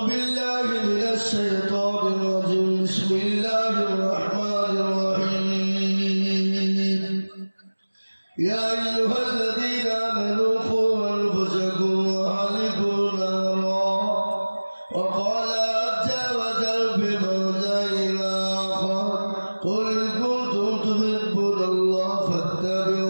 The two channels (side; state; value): both; inverted; correlation -1.00